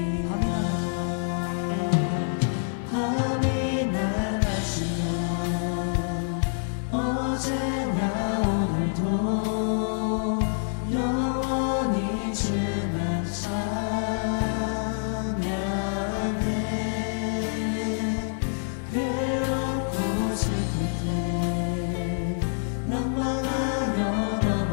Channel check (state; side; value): silent; right; 56 dB below the other